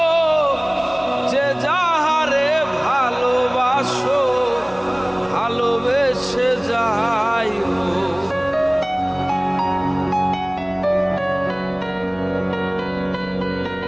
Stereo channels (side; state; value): right; noise; rumble, 27 dB below the sound